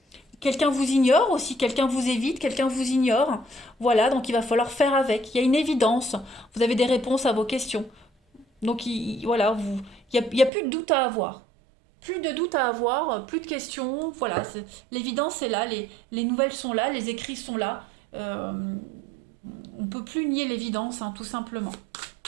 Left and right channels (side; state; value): left; drops out; at 10.5 s